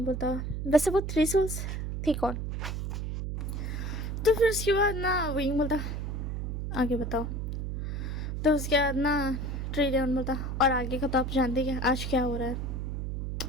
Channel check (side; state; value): right; noise; hum, 3 dB below the sound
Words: बोलता, वैसे वो 3 सोल्स थी कौन? तो फिर उसके बाद ना विंग बोलता, आगे बताओ। तो उसके बाद ना ट्रिडल बोलता, और आगे का तो आप जानते हैं आज क्या हो रहा है।